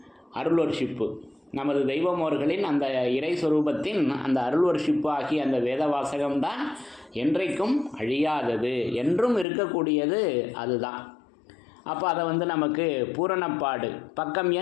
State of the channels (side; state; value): right; drops out; at 9.5 s